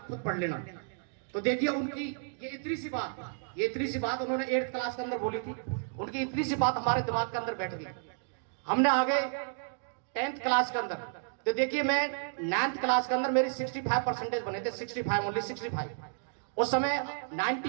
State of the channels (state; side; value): silent; left; digital silence